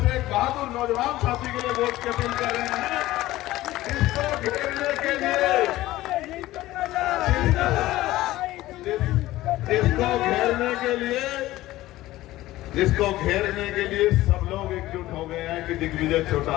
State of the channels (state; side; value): quieter; right; 16.4 dB